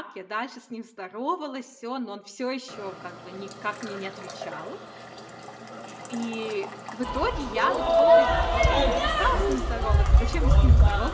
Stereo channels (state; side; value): identical; both; correlation 1.00